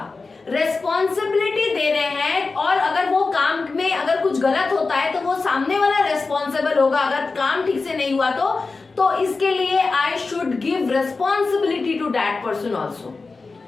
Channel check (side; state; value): right; quieter; 4.0 dB